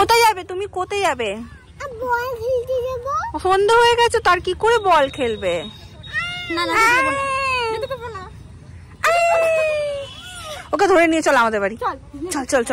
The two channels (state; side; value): identical; both; correlation 1.00